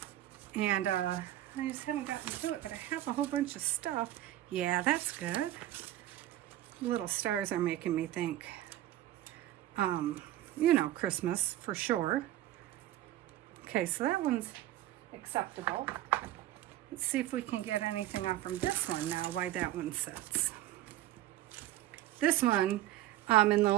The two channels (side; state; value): left; quieter; 14.1 dB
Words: And I just haven't gotten to it, but I have a whole bunch of stuff. Yeah, that's good. Little stars are making me think, you know, Christmas for sure. Okay, so that one's acceptable. Let's see if we can get anything off from this one now, why that one sits. This one, in the